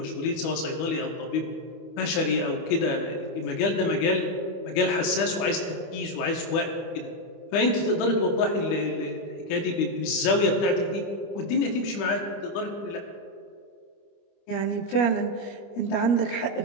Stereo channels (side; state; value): right; late; 25 ms